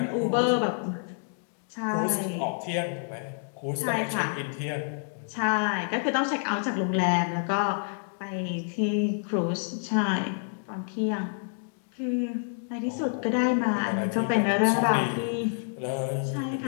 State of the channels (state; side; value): silent; right; digital silence